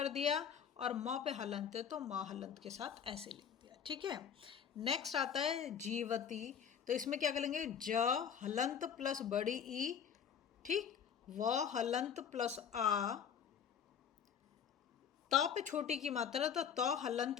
दिया, और म पे हलंत है तो म हलंत के साथ ऐसे लिख दिया। ठीक है, नेक्स्ट आता है जीवती, तो इसमें क्या करेंगे, ज हलंत प्लस बड़ी ई, ठीक, व हलंत प्लस आ, त पे छोटी की मात्रा तो त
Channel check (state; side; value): quieter; right; 7.9 dB